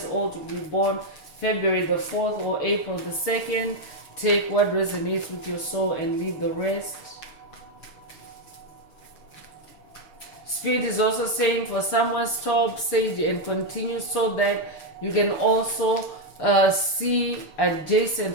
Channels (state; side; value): late; right; 6.7 ms